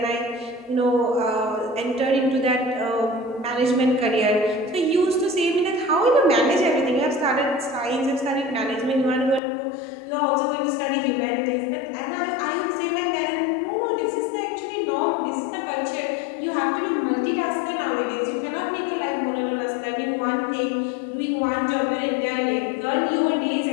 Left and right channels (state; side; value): drops out; right; at 9.4 s